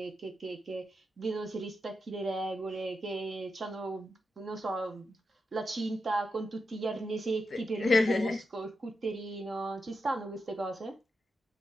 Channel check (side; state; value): both; normal; correlation 0.87